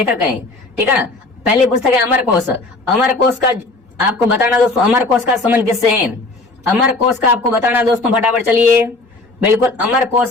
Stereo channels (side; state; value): right; quieter; 3.1 dB